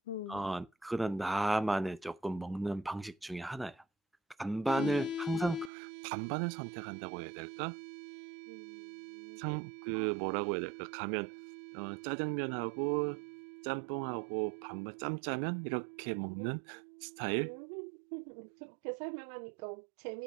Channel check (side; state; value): left; drops out; at 5.7 s